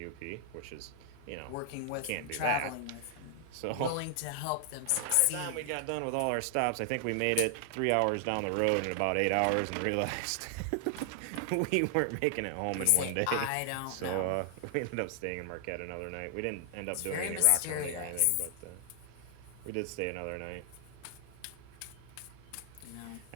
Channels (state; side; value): different; both; correlation 0.00